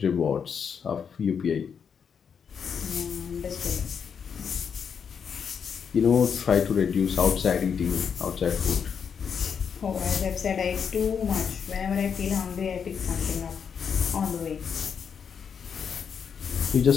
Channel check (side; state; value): right; quieter; 6.9 dB